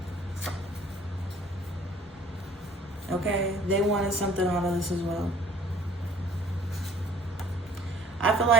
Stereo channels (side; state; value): both; normal; correlation 0.55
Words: Okay? They wanted something out of this as well. I feel